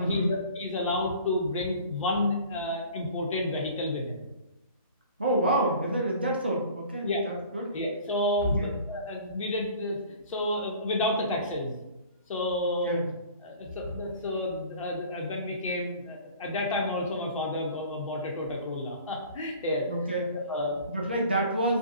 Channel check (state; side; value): inverted; both; correlation -0.46